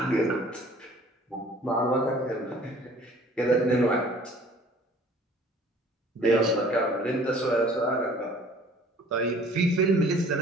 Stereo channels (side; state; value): both; normal; correlation 0.52